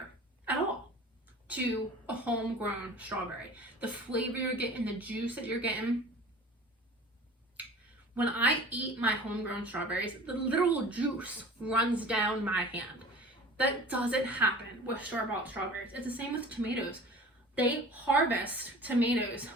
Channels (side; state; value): both; normal; correlation 0.42